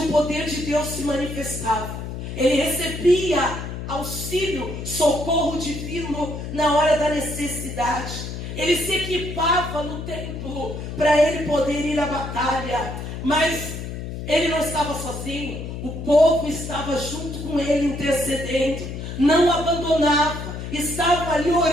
poder de Deus se manifestava. Ele recebia auxílio, socorro divino na hora da necessidade. Ele se equipava no templo para ele poder ir à batalha, mas ele não estava sozinho, o povo estava junto com ele, intercedendo, não abandonava, estavam ali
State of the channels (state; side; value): noise; left; hum, 7 dB below the sound